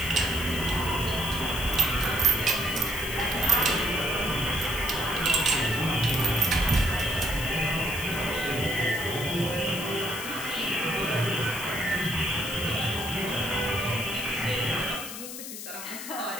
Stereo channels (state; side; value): noise; left; hiss, 9 dB below the sound